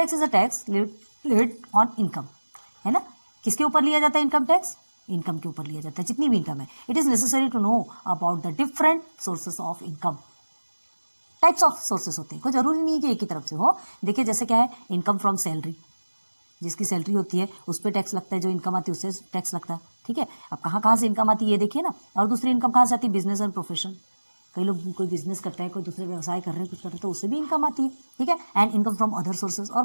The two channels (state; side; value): inverted; both; correlation -1.00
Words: is a tax levied on income, है ना। किसके ऊपर लिया जाता है इनकम टैक्स, इनकम के ऊपर लिया जाता है, जितनी भी इनकम है। It is necessary to know about the different sources of income. Types of sources होते हैं, कोई जरूरी नहीं है कि एक ही तरफ से हो। देखिए जैसे क्या है, इनकम फ्रॉम सैलरी, जिसकी सैलरी होती है उस पर टैक्स लगता है, जो इनकम आती है उससे टैक्स लगता है, ठीक है। अब कहाँ कहाँ से इनकम आती है ये देखिए ना। और दूसरी इनकम कहाँ से आती है, बिजनेस एंड प्रोफेशन, कई लोग कोई बिजनेस करता है, कोई दूसरे व्यवसाय कर रहे हैं, कुछ कर रहे हैं, तो उससे भी इनकम आती है, ठीक है। And income from other sources, और